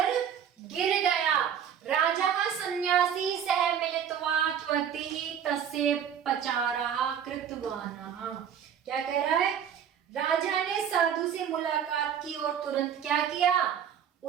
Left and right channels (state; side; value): quieter; left; 8.6 dB